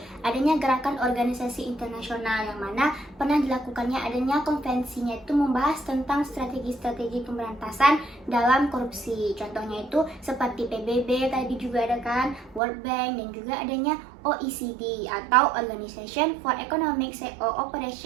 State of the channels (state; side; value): drops out; left; at 12.6 s